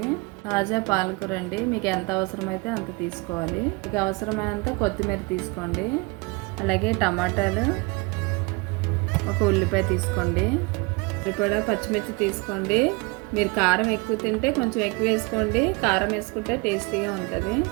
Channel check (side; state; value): left; quieter; 27.6 dB